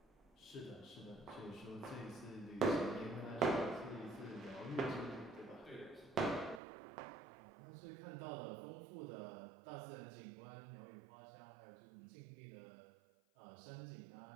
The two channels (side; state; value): left; drops out; at 6.6 s